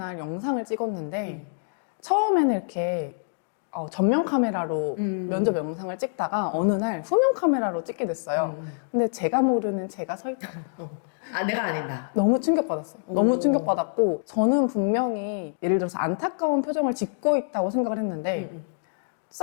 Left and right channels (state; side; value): silent; right; digital silence